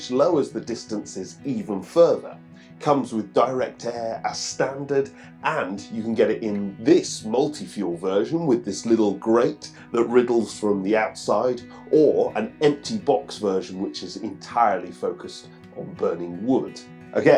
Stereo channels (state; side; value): identical; both; correlation 1.00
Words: lowers the distances even further. Comes with direct air as standard, and you can get it in this multi-fuel version with this little grate that riddles from the outside, or an empty box version which is entirely focused on burning wood.